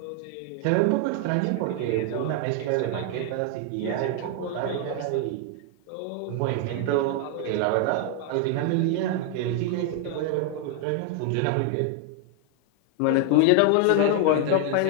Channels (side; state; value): both; different; correlation 0.01